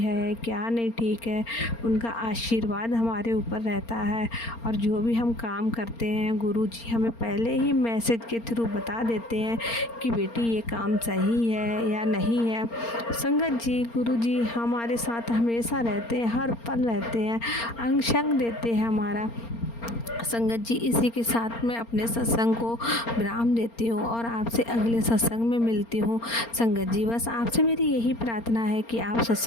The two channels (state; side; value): late; right; 4.3 ms